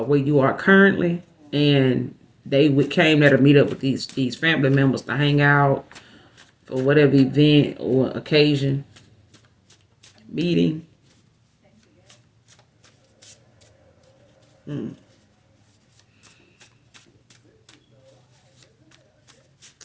where you are currently. And they came there to meet up with these family members to hang out for whatever event or occasion, meeting.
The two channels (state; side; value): identical; both; correlation 1.00